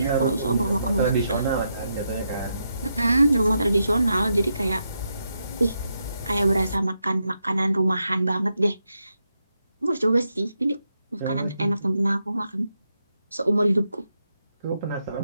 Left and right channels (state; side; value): inverted; both; correlation -0.83